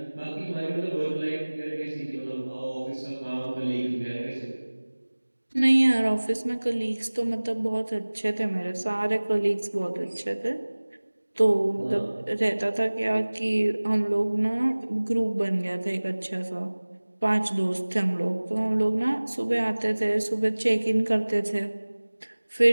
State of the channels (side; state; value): both; inverted; correlation -1.00